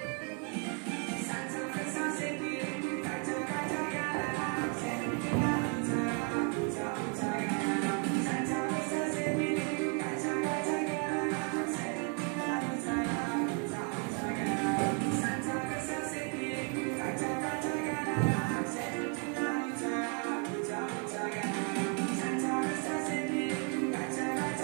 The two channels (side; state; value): left; quieter; 39.0 dB